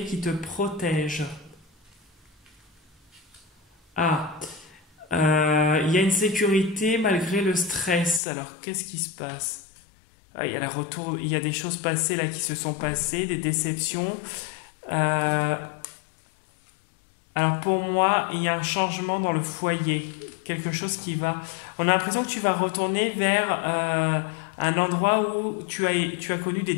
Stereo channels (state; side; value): drops out; right; at 8.2 s